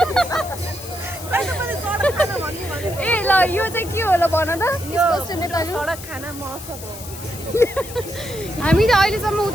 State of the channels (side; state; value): left; noise; hiss, 13 dB below the sound